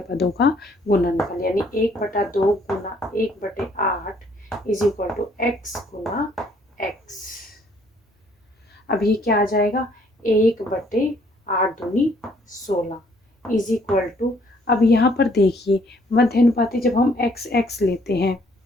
पदों का गुणनफल, यानी 1/2 गुना 1/8 इज इक्वल टू x गुना x। अब ये क्या आ जाएगा 1/8 दूनी 16 इज इक्वल टू, अब यहाँ पर देखिए मध्यानुपाती जब हम x लेते हैं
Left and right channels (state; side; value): normal; both; correlation 0.64